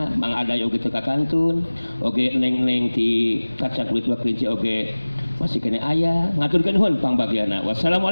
Mang Aday oge teka kantun, oge neng-neng ti kacang kulit waklinci oge masih kena aya ngaturkeun nuhun pangbagiana.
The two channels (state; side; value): inverted; both; correlation -1.00